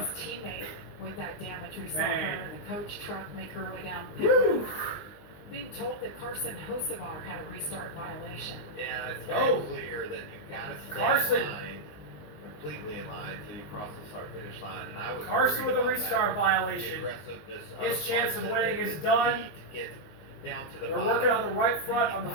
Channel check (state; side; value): late; right; 19 ms